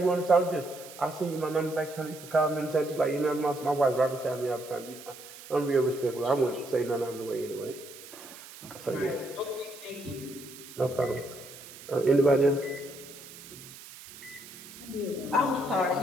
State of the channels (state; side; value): noise; right; hiss, 16 dB below the sound